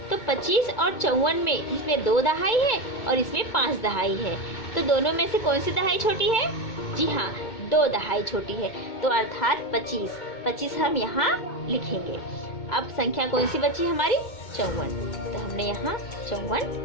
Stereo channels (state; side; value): late; right; 2.2 ms